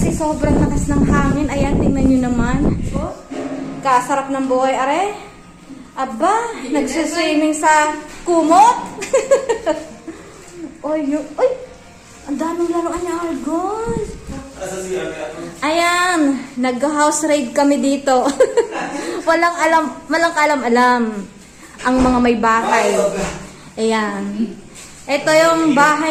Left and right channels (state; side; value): identical; both; correlation 1.00